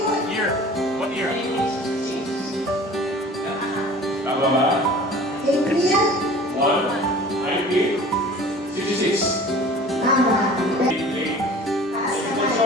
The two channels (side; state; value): both; normal; correlation 0.44